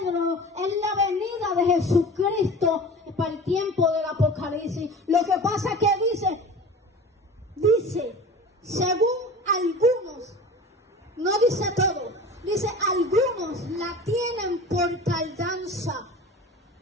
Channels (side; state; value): both; normal; correlation 0.37